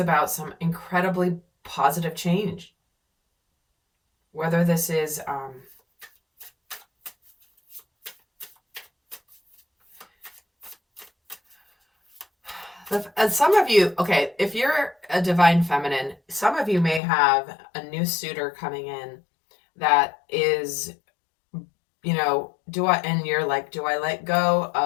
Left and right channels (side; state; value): right; drops out; at 17.0 s